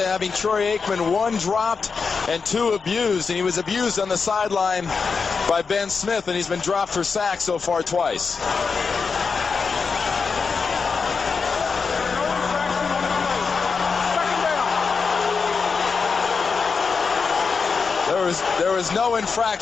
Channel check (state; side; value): quieter; right; 5.1 dB